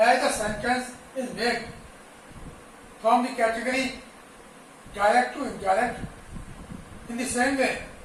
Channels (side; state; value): both; identical; correlation 1.00